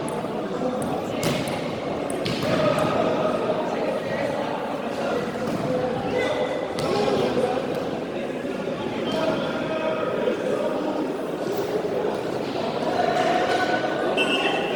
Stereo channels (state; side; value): identical; both; correlation 1.00